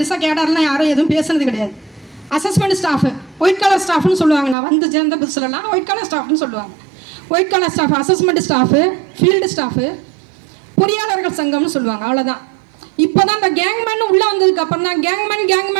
கேடர்லாம் யாரும் எதுவும் பேசுனது கிடையாது. அசஸ்மெண்ட் ஸ்டாஃபு, ஒயிட் கலர் ஸ்டாஃப்னு சொல்லுவாங்க. நான் வந்து சேர்ந்த புதுசுலலாம் ஒயிட் கலர் ஸ்டாஃப்னு சொல்லுவாங்க. White colour staff, assessment staff, field staff, பொறியாளர்கள் சங்கம்னு சொல்லுவாங்க. அவ்வளோதான். இப்போ தான் இந்த கேங்மேன் உள்ளே வந்ததுக்கு அப்புறம் தான்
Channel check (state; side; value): drops out; left; at 4.5 s